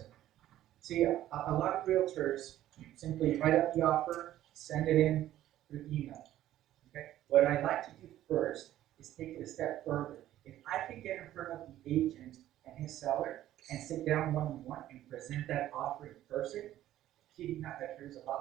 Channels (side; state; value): left; quieter; 13.2 dB